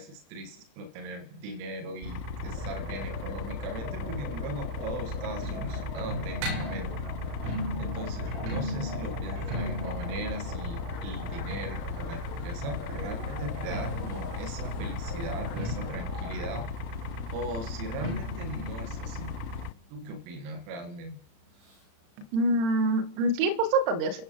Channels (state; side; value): late; left; 35 ms